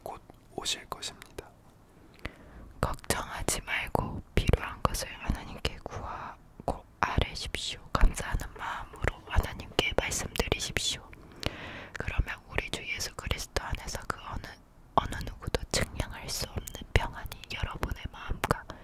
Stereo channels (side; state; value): both; identical; correlation 1.00